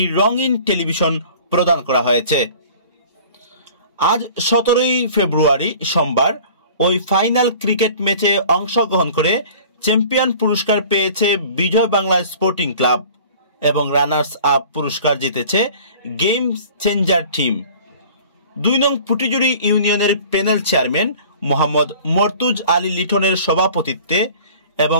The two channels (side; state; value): both; inverted; correlation -0.46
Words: রঙিন টেলিভিশন প্রদান করা হয়েছে। আজ ১৭ ফেব্রুয়ারি সোমবার ওই ফাইনাল ক্রিকেট ম্যাচে অংশগ্রহণ করে চ্যাম্পিয়ন পুরস্কার পেয়েছে বিজয় বাংলা স্পোর্টিং ক্লাব এবং রানার্স আপ পুরস্কার জিতেছে গেম চেঞ্জার টিম। ২ নং পুটিজুড়ি ইউনিয়নের প্যানেল চেয়ারম্যান মোহাম্মদ মর্তুজ আলী লিটনের সভাপতিত্বে